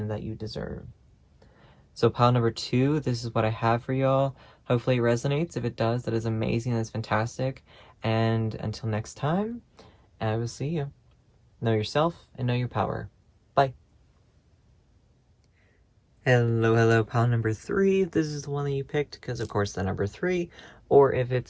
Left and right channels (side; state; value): both; identical; correlation 1.00